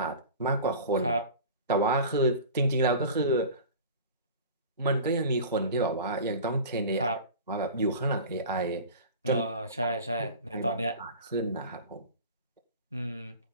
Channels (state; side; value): inverted; both; correlation -0.36